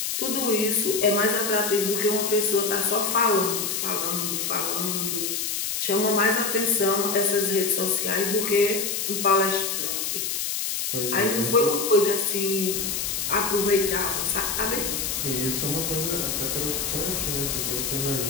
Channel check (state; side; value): noise; left; hiss, 1 dB below the sound